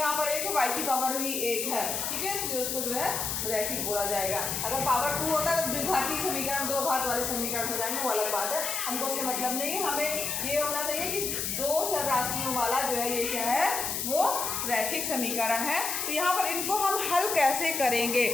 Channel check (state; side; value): noise; left; hiss, 1 dB below the sound